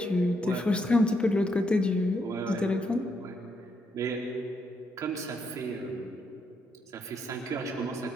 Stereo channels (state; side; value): normal; both; correlation 0.77